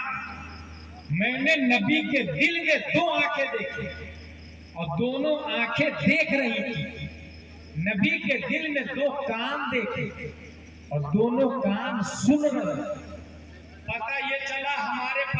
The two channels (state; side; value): identical; both; correlation 1.00